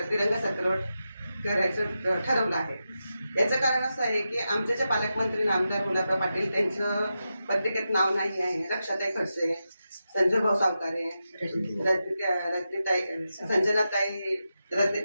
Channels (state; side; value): inverted; both; correlation -0.90